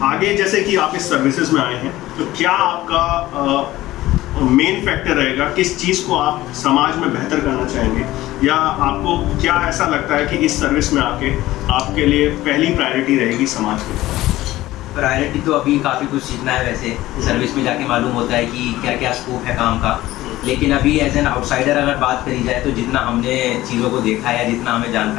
आगे, जैसे कि आप इस सर्विसेज में आए हैं, तो क्या आपका मेन फैक्टर रहेगा, किस चीज़ को आप समाज में बेहतर करना चाहेंगे, या आपको क्या ऐसा लगता है कि इस सर्विस में आके आपके लिए पहली प्रायोरिटी रहेगी समाज की? प्रायोरिटी तो अभी काफ़ी कुछ सीखना है, वैसे सर्विस में जाके मालूम होता है कि क्या क्या स्कोप है काम का। लेकिन अभी एज एन आउटसाइडर अगर बात करी जाए तो जितना हमने चीज़ों को देखा है, जितना हमें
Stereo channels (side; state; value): right; quieter; 16.4 dB